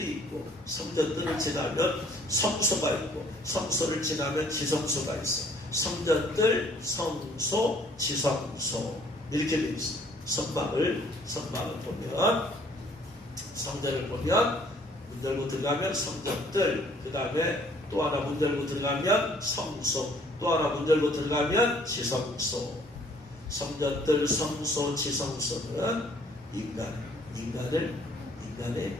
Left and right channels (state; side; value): normal; both; correlation 0.59